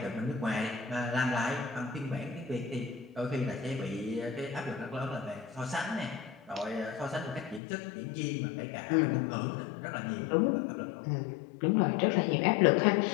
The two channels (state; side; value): drops out; right; at 7.6 s